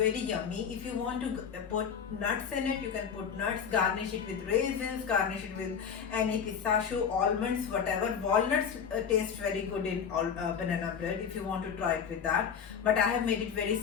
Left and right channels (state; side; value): quieter; right; 7.1 dB